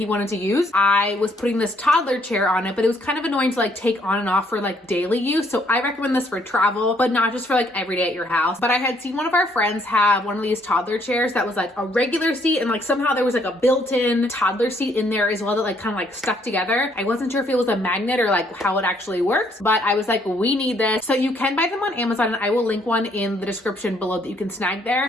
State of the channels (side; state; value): both; normal; correlation 0.68